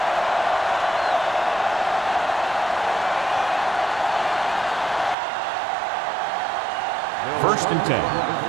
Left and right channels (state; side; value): drops out; left; at 5.2 s